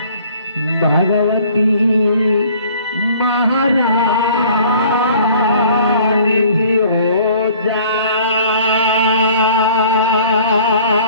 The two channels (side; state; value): both; inverted; correlation -0.53